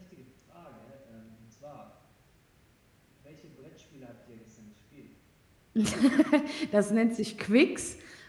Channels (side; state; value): both; identical; correlation 1.00